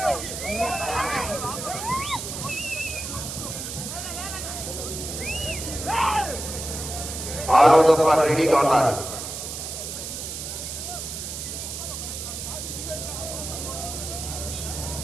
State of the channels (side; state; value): right; noise; hiss, 6 dB below the sound